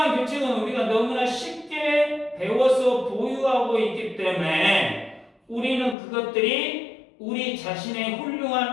규칙은 우리가 너무나 쉽게 배워서 보유하고 있기 때문에 우리는 그것들이 우리 자신의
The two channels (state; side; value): drops out; right; at 6.0 s